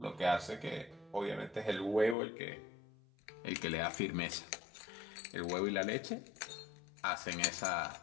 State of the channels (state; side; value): drops out; right; at 2.1 s